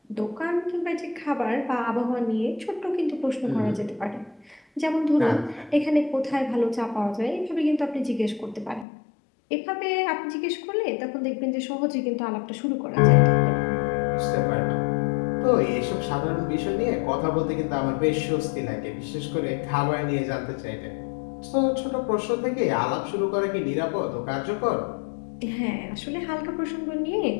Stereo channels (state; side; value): drops out; right; at 8.8 s